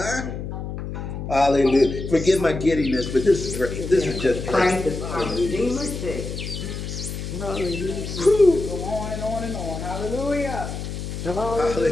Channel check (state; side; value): noise; left; hum, 6 dB below the sound